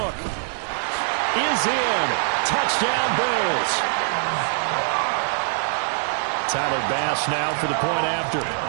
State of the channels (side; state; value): left; silent; digital silence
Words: is in. Touchdown, Bills. Tyler Bass now for the point after.